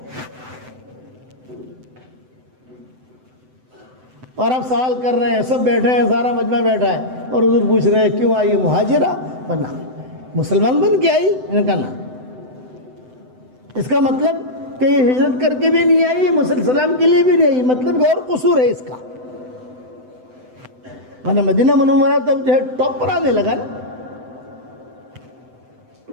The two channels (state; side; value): late; left; 7.9 ms